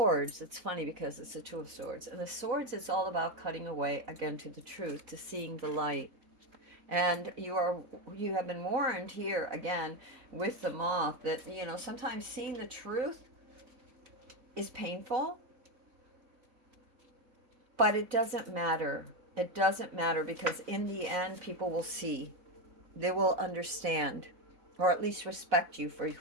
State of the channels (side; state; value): left; late; 4.0 ms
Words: it's funny because it's the two of swords, and the swords is all about cutting away again to the truth, to seeing the light. And you have been warned here again with the moth that sometimes seeing the truth is painful, but it doesn't matter. It doesn't matter, because in the end people will see, they will understand, or at least respect you for